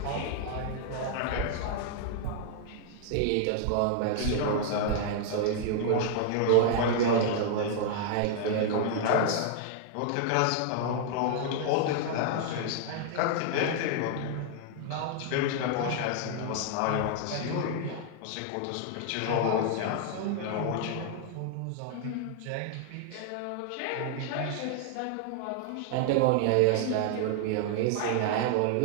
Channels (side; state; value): both; different; correlation -0.01